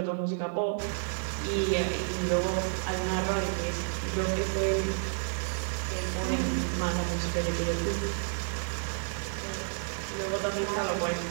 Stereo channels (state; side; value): silent; left; 57 dB below the other